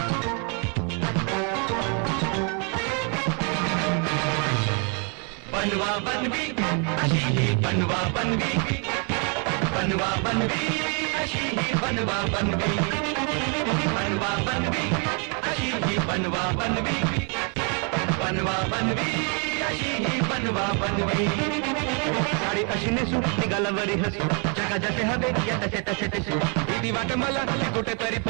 बनवा बनवी अशी ही बनवा बनवी बनवा बनवी अशी ही बनवा बनवी बनवा बनवी अशी ही बनवा बनवी बनवा बनवी अशी ही बनवा बनवी साडी अशी नेसू निघाला वरी हसू जगा जसे हवे या तसे तसे दिसू भीती वाट मला कुठेतरी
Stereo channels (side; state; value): left; quieter; 37.3 dB